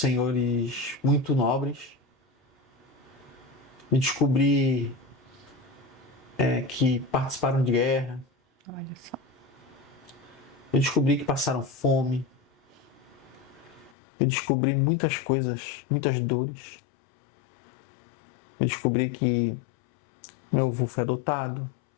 muito nobres. Eu descobri que participaram de guerra. Olha só. Eu descobri que passaram fome. Eu descobri muitas coisas, muitas dores. Eu descobri que meu avô foi adotado,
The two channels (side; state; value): right; drops out; at 13.9 s